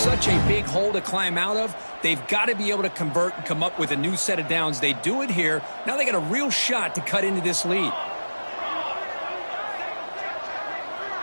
a big hole to climb out of, they've got to be able to convert and come up with a new set of downs. They do it here. Now they got a real shot to cut into this lead.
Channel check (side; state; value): both; inverted; correlation -1.00